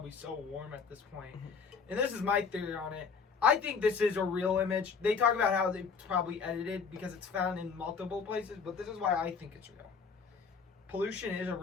so warm at this point. Mm-hmm. And this is my theory on it. I think this is a real image. They talk about how they probably edited because it's found in multiple places, but this is why I think it's real. Pollution is a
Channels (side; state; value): right; quieter; 5.6 dB